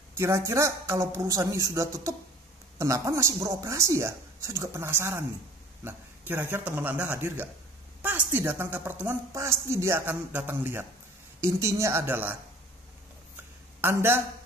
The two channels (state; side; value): normal; both; correlation 0.48